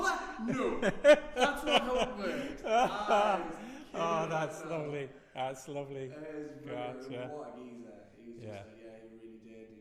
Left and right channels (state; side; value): identical; both; correlation 1.00